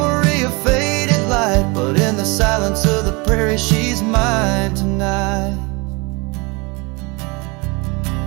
of faded light, but in the silence of the prairie she's mine tonight.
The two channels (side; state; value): left; quieter; 27.6 dB